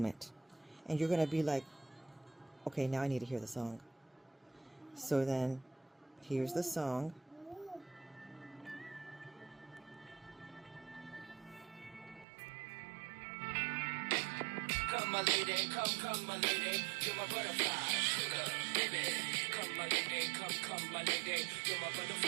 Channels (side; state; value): left; drops out; at 12.2 s